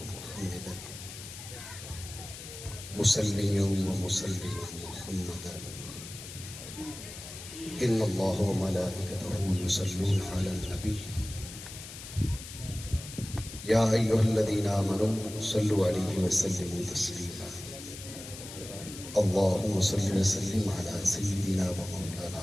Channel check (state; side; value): noise; left; hiss, 12 dB below the sound